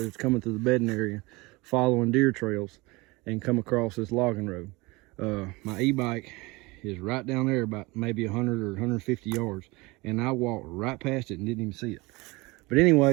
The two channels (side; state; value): left; quieter; 23.8 dB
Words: was coming through the bedding area, following deer trails, and come across this logging road. My e-bike is right down there about maybe 100 or 150 yards, and I walked right past it and didn't even see it. But